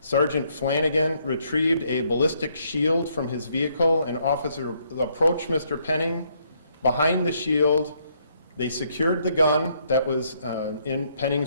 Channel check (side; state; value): both; inverted; correlation -0.71